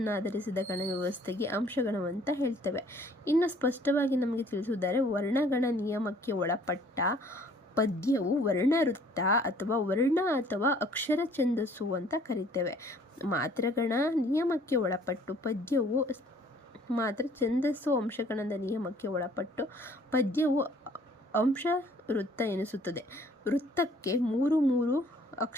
ಆಧರಿಸಿದ ಗಣವ್ಯವಸ್ಥೆಗೆ ಅಂಶಗಣವಂತ ಹೇಳ್ತೇವೆ. ಇನ್ನು ಸ್ಪಷ್ಟವಾಗಿ ನಮಗೆ ತಿಳಿಸುವುದಾದರೆ ವರ್ಣಗಣ ನಿಯಮಕ್ಕೆ ಒಳಪಟ್ಟ ಪದ್ಯವು ವರ್ಣವೃತ್ತ ಅಥವಾ ವರ್ಣ ಅಥವಾ ಅಕ್ಷರ ಛಂದಸ್ಸು ಅಂತ ಕರಿತೇವೆ. ಮಾತ್ರೆಗಣ ನಿಯಮಕ್ಕೆ ಒಳಪಟ್ಟು ಪದ್ಯವು ಮಾತ್ರ ಛಂದಸ್ಸು, ಅಂಶಗಣದ ನಿಯಮಕ್ಕೆ ಒಳಪಟ್ಟು ಪದ್ಯವು ಅಂಶ ವೃತ್ತ ಎನಿಸುತ್ತದೆ. ವೃತ್ತಕ್ಕೆ 3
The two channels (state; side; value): normal; both; correlation 0.57